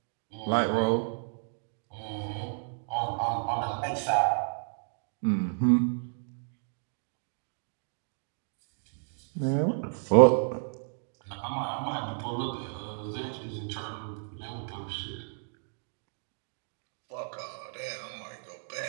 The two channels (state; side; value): silent; left; digital silence